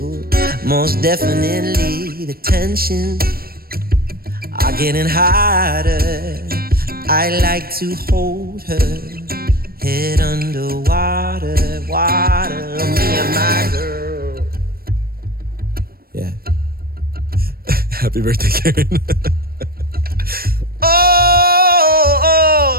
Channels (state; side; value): late; left; 0.44 ms